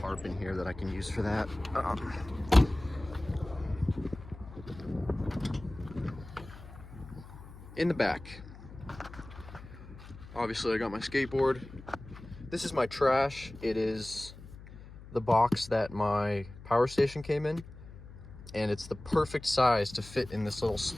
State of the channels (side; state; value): left; noise; hum, 16 dB below the sound